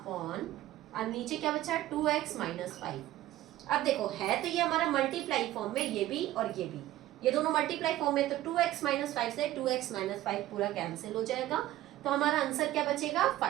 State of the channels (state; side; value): quieter; left; 14.9 dB